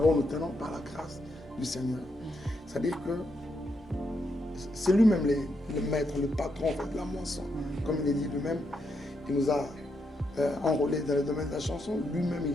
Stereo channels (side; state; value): both; normal; correlation 0.81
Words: nous tenons par la grâce du Seigneur. C'est-à-dire que c'est lui-même le maître, le patron en fait, de la moisson. Comme il est dit lui-même, il nous a enrôlés dans le domaine de la chanson. Lui-même,